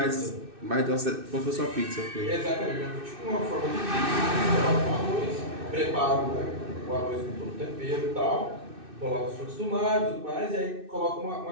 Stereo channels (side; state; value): left; late; 2.6 ms